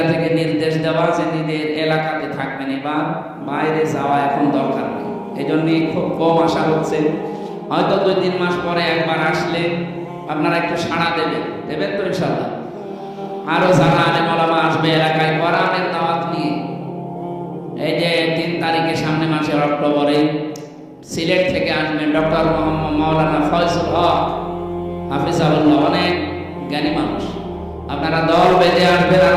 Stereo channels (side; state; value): both; identical; correlation 1.00